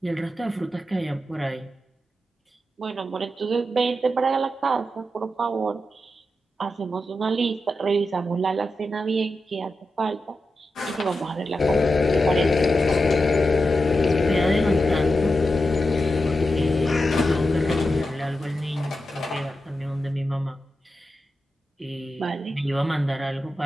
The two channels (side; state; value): both; normal; correlation 0.89